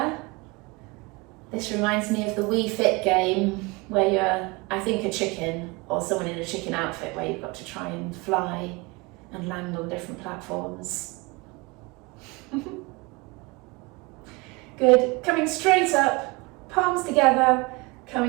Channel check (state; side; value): quieter; left; 25.4 dB